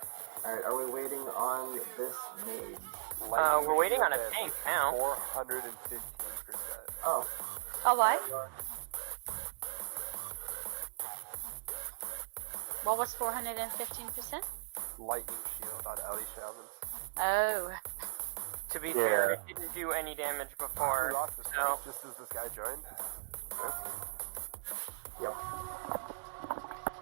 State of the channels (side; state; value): left; quieter; 34.3 dB